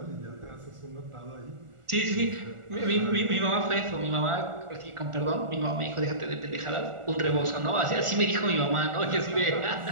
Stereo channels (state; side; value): late; left; 1.4 ms